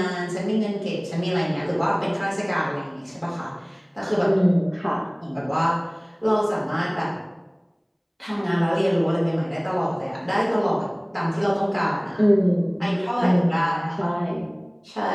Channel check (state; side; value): identical; both; correlation 1.00